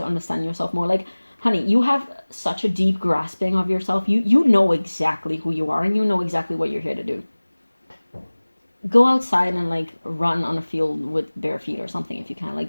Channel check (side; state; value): both; inverted; correlation -1.00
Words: understand yourself more, like, honey, you have such a deep grasping of yourself. You know exactly who you are and you know exactly what you're here to do. Go outside and like run on a field with bare feet or something if you can.